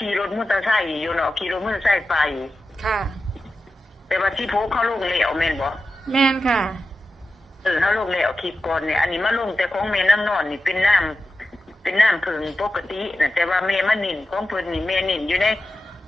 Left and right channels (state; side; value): normal; both; correlation 0.92